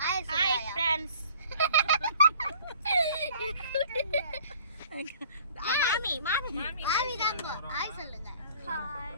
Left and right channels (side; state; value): both; inverted; correlation -0.52